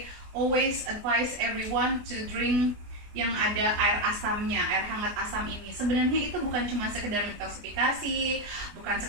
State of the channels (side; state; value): left; late; 24 ms